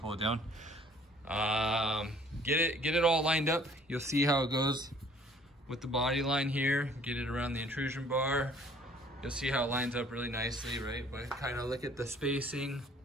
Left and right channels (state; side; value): normal; both; correlation 0.56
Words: it down. Get it all lined up. You'll see how it goes with the body line here. Get it around the intrusion bar. You'll see how it lines up really nicely, right? But kind of look at the spacing